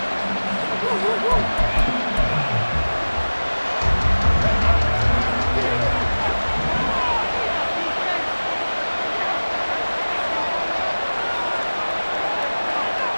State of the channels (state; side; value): inverted; both; correlation -1.00